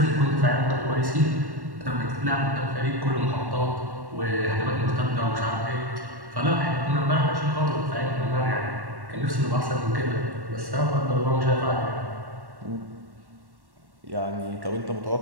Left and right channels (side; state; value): left; late; 1.1 ms